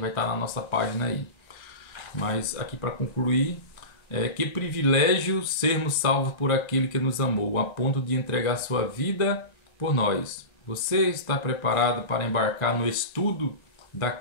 estar na nossa página aí. Mas aqui para concluir, que privilégio sermos salvos por aquele que nos amou, a ponto de entregar sua vida por nós. Você está preparado para embarcar no estudo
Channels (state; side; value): late; right; 1.3 ms